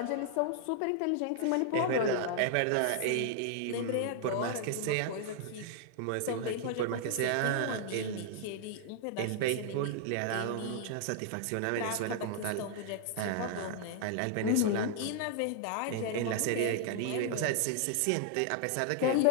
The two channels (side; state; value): both; different; correlation 0.00